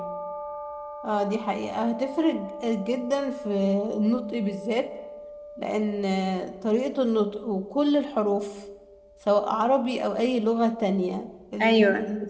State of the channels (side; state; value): both; identical; correlation 1.00